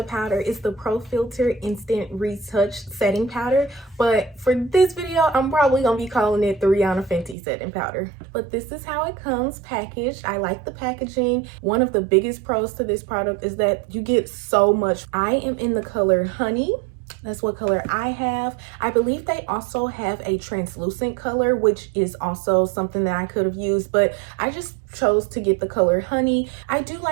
powder is the Pro Filt'r Instant Retouch Setting Powder, but for this video I'm probably gonna be calling it the Rihanna Fenty setting powder. But this is how it comes packaged. I like the packaging. One of the biggest pros to this product is that you get so much. I am in the color Honey. That's what color I have. I believe they also have a translucent color, which is also something that I could have used, but I just chose to get the color Honey. I do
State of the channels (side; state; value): left; drops out; at 7.4 s